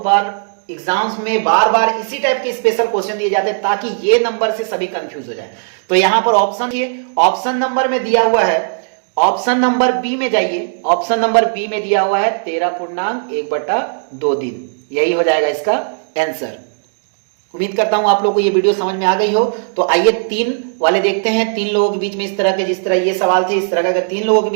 बार एग्जाम्स में बार बार इसी टाइप के स्पेशल क्वेश्चन दिए जाते हैं ताकि ये नंबर से सभी कंफ्यूज हो जाए। तो यहां पर ऑप्शन ये ऑप्शन नंबर में दिया हुआ है, ऑप्शन नंबर बी में जाइए, ऑप्शन नंबर बी में दिया हुआ है 13.1/2 दिन, यही हो जाएगा इसका आंसर। उम्मीद करता हूं आप लोगों को ये वीडियो समझ में आ गई हो। तो आइए 3 वाले देखते हैं, 3 लोगों के बीच में इस तरह के, जिस तरह ये सवाल थे इस तरह का अगर 3 लोगों के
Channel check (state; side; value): silent; left; digital silence